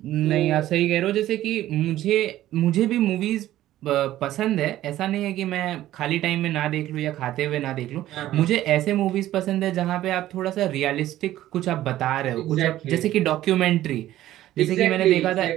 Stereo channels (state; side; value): quieter; left; 14.0 dB